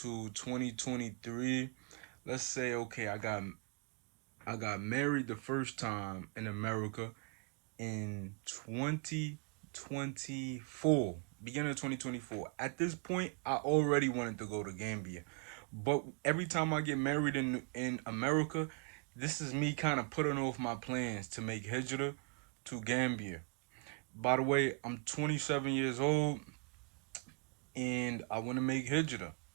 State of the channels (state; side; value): quieter; left; 39.9 dB